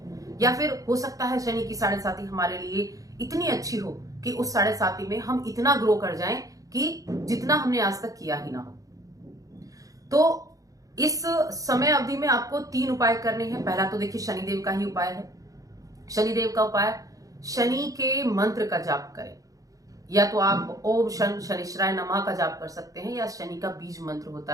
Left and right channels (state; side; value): late; left; 0.17 ms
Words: या फिर हो सकता है शनि की साढ़े साती हमारे लिए इतनी अच्छी हो कि उस साढ़े साती में हम इतना ग्रो कर जाएं कि जितना हमने आज तक किया ही ना हो। तो इस समय अवधि में आपको 3 उपाय करने हैं। पहला तो देखिए शनिदेव का ही उपाय है। शनिदेव का उपाय, शनि के मंत्र का जाप करें, या तो आप ओम शन शनिश्चराय नमः का जाप कर सकते हैं, या शनि का बीज मंत्र